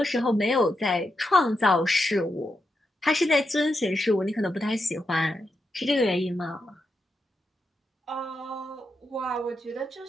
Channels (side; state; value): both; normal; correlation 0.85